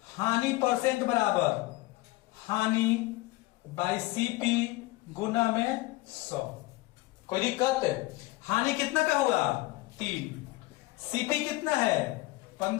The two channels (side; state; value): right; quieter; 20.3 dB